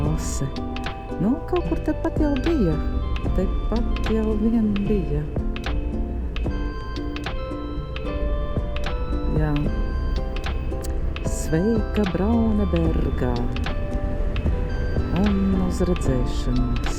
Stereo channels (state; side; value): identical; both; correlation 1.00